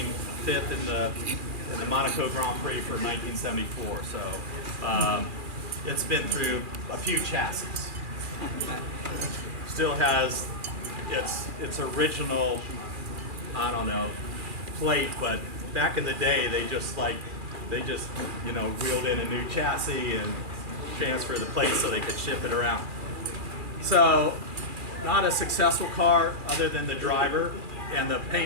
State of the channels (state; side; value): late; left; 2.4 ms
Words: fifth in the Monaco Grand Prix for 1974. So it's been through a few chassis. Still has its original, I don't know, plate, but back in the day they just wheeled in a new chassis and transferred the plate so they could ship it around. So not a successful car other than the driver, and the